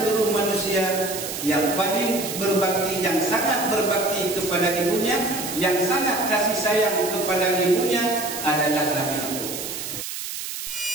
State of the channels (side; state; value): right; noise; hiss, 7 dB below the sound